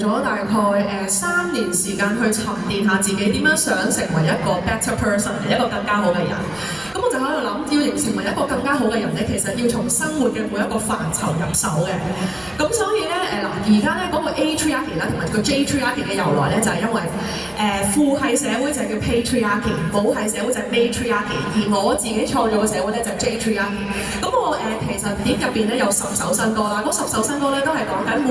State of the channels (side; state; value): right; noise; hum, 24 dB below the sound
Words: 大概3年時間去沉澱下自己點樣想成為一個 better person， 一個更加好嘅人。咁我就喺度諗，要成為一個更加好嘅人咧，其實要從生活嘅每一個範疇入手嘅。咁所以咧而家咧嗰個 A-Triarchy 啦，同埋個 J-Triarchy 嘅由來咧，就係因為父系社會就係叫 Patriarchy， 母系社會就係 Matriarchy， 而我自己創造嘅社會咧就係 J-Triarchy。咁我其實碟入邊咧有10首新歌啦，嗰10首新歌咧都係講緊